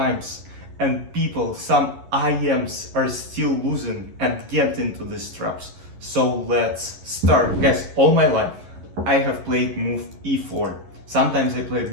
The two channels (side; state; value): left; late; 11 ms